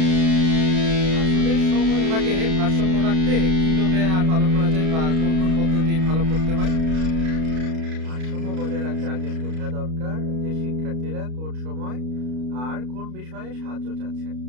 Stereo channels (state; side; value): late; left; 32 ms